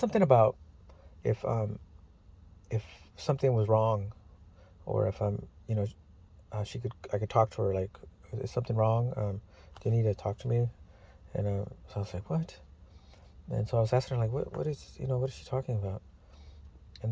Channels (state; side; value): identical; both; correlation 1.00